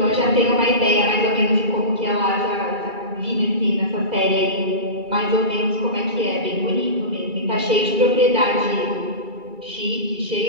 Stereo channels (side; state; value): left; late; 2.3 ms